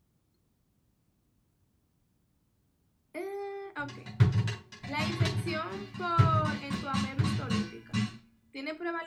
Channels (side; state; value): both; identical; correlation 1.00